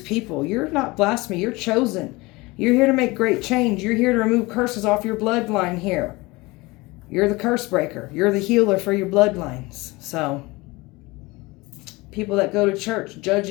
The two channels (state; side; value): quieter; right; 22.8 dB